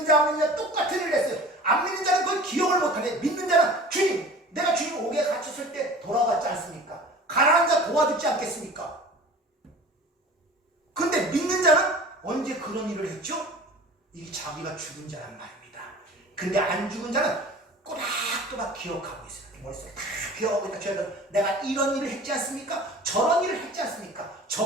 자 안 믿는 자 똑같은 일을 했어요. 안 믿는 자는 그걸 기억을 못하네. 믿는 자는 주님 내가 주님 옥에 갇혔을 때 돌아왔지 않습니까? 가난한 자 도와주지 않겠습니까? 근데 믿는 자는 언제 그런 일을 했죠? 이게 자기가 죽은 자란 말입니다. 근데 안 죽은 자는 꼬박꼬박 기억하고 있어요. 머릿속에 다 기억하고 있다. 내가 이런 일을 했지 않습니까? 저런 일을 했지 않습니까?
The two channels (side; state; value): both; normal; correlation 0.41